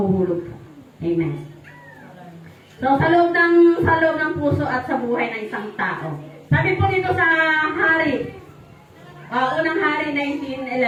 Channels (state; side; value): identical; both; correlation 1.00